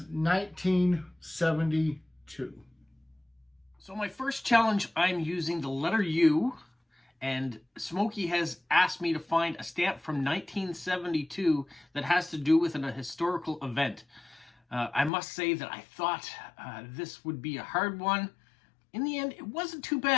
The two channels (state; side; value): drops out; right; at 15.1 s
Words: 1972. So my first challenge, I'm using the letter U, and Smokey has asked me to find a stamp from 1972 that has to do with a historical event. I must say that I thought this would be a hard one. In the end, it wasn't too